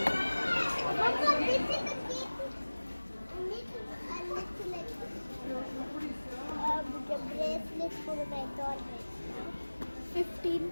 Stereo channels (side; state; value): both; inverted; correlation -1.00